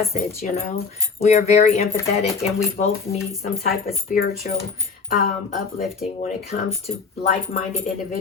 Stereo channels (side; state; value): right; quieter; 5.0 dB